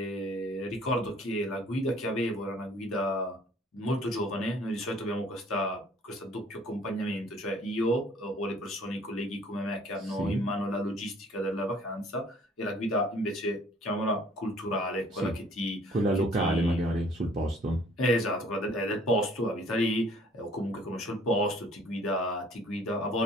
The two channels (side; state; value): both; normal; correlation 0.56